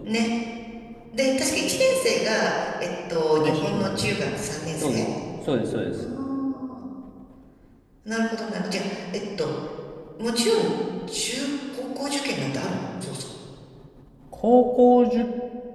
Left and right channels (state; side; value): identical; both; correlation 1.00